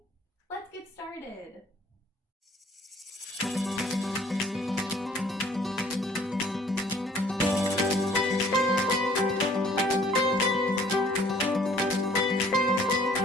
Let's get started.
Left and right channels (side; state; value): both; normal; correlation 0.56